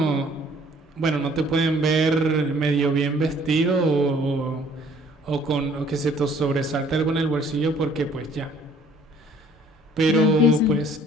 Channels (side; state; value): both; normal; correlation 0.58